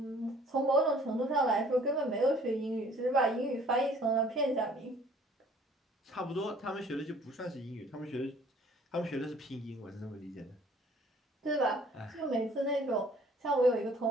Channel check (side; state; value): both; normal; correlation 0.55